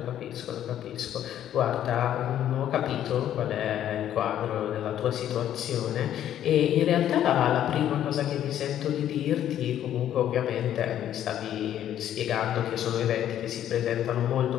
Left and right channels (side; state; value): right; quieter; 11.1 dB